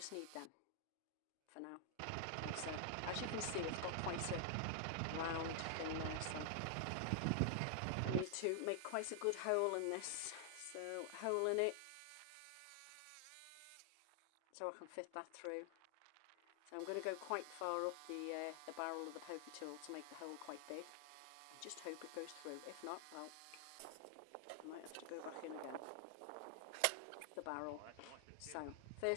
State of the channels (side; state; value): both; different; correlation 0.00